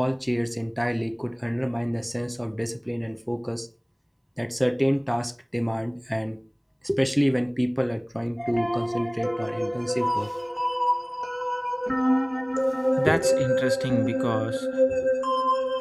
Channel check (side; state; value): both; identical; correlation 1.00